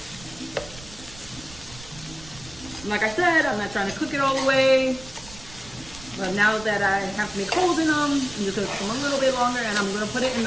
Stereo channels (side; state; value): right; noise; rumble, 18 dB below the sound